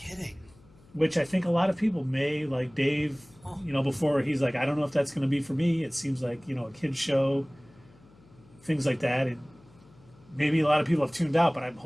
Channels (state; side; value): noise; left; hum, 27 dB below the sound